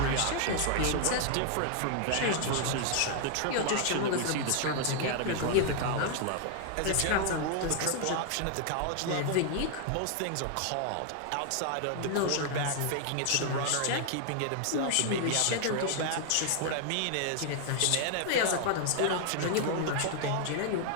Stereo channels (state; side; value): different; both; correlation 0.00